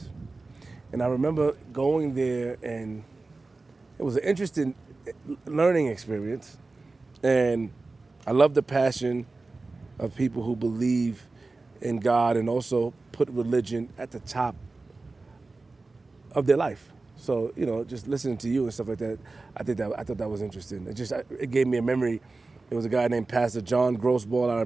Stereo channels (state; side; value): quieter; left; 3.5 dB